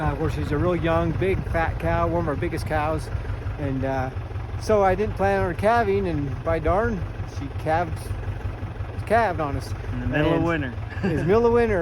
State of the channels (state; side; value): identical; both; correlation 1.00